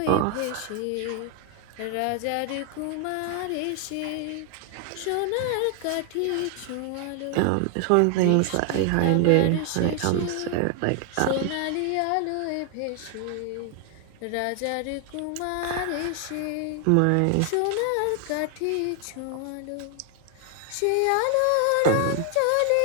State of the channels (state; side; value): different; both; correlation 0.00